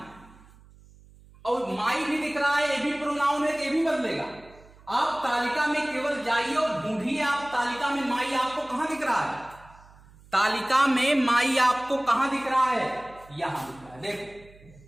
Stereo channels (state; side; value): noise; right; hum, 24 dB below the sound